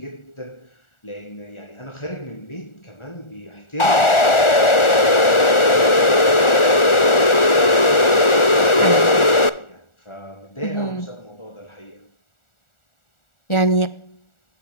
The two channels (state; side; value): late; right; 1.4 ms